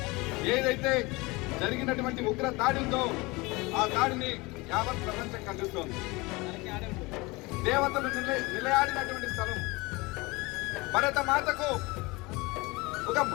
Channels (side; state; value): right; quieter; 24.1 dB